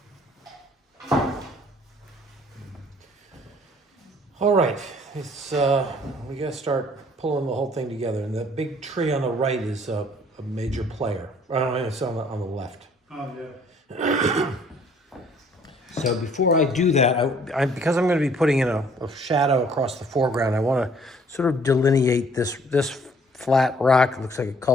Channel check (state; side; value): normal; both; correlation 0.59